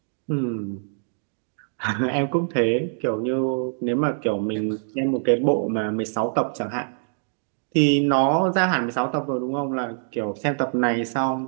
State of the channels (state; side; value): silent; left; digital silence